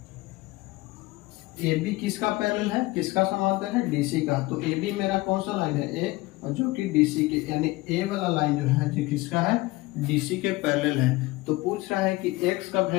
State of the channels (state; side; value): quieter; right; 20.6 dB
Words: AB किसका पैरेलल है? किसका समांतर है? DC का। तो AB मेरा कौन सा लाइन है? A, और जो कि DC के, यानी A वाला लाइन जो है जो किसका है? DC के पैरेलल है। तो पूछ रहा है कि x का